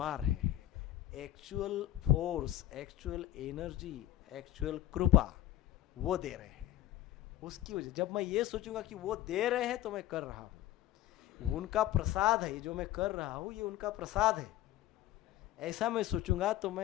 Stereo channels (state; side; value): quieter; right; 13.6 dB